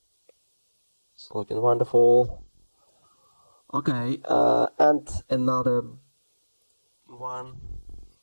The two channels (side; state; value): both; inverted; correlation -1.00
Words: It's looking wonderful. Okay, and another one,